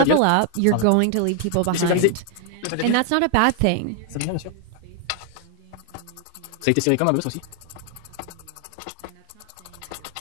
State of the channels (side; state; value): both; different; correlation 0.00